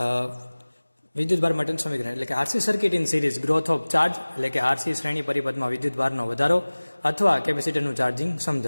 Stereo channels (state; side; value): inverted; both; correlation -1.00